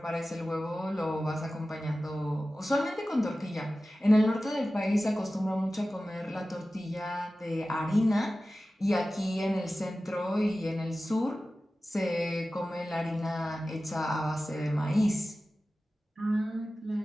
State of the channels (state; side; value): normal; both; correlation 0.95